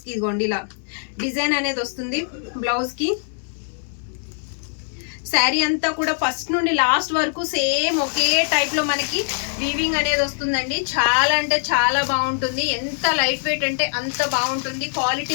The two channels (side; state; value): right; silent; digital silence